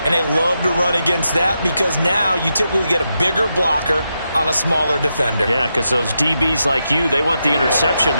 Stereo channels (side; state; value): both; inverted; correlation -0.85